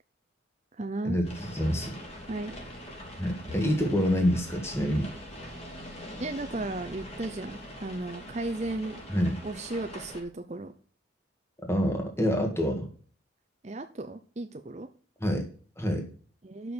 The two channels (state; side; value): normal; both; correlation 0.75